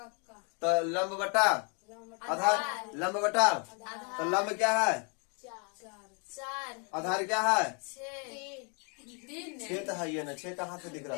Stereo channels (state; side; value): quieter; right; 36.3 dB